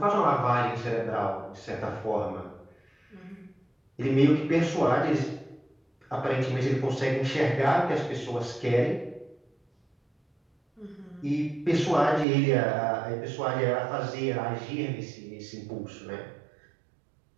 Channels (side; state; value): left; drops out; at 12.2 s